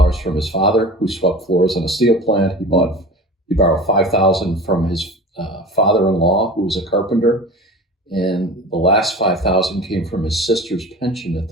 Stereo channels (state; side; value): normal; both; correlation 0.36